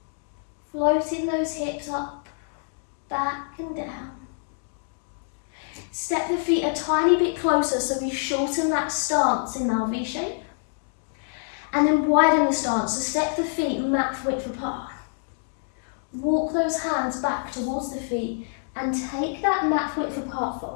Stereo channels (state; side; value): silent; right; 61 dB below the other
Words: Floating those hips up, back and down. Step the feet a tiny bit closer so we shorten that stance in our V shape. And then widen the stance, so step the feet mat width apart. Walk those hands back towards the feet and take that mat width apart